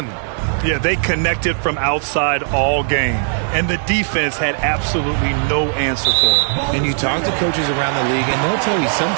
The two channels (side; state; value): left; silent; 56 dB below the other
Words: Yeah, they connected from outside all game, and the defense had absolutely no answer for it. And you talk to coaches around the league, and they'll tell you